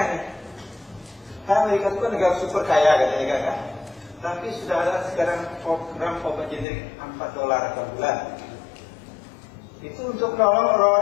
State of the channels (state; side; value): drops out; right; at 6.7 s